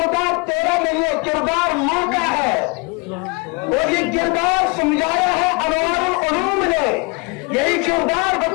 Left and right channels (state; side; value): quieter; right; 29.5 dB